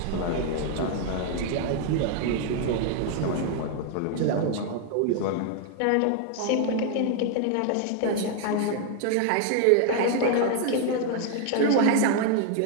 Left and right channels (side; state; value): both; different; correlation 0.00